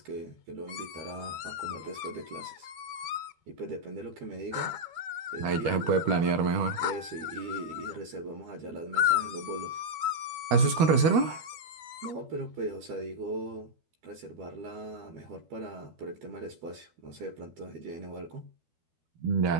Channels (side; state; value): left; late; 12 ms